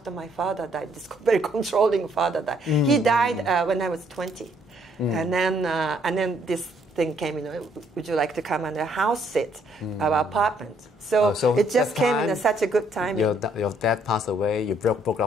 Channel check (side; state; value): both; normal; correlation 0.68